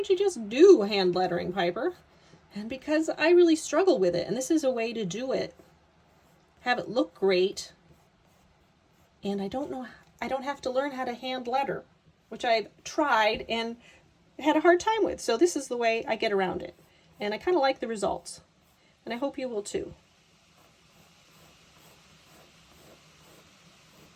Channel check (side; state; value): both; identical; correlation 1.00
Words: you just do hand lettering, Piper? And because I really struggle with it, and this is a way to do it. Have it look great, and I don't have to learn how to hand letter, which I've tried and had a hard time with. So this is the way I get around it, and I kind of like the results, and I hope you will too.